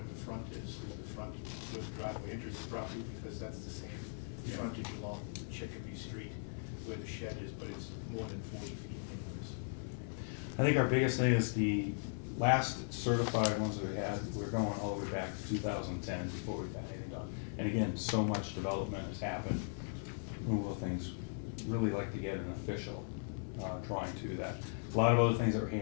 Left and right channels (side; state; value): right; silent; 52 dB below the other